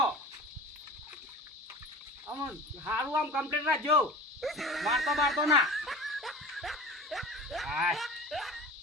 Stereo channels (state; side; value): normal; both; correlation 0.37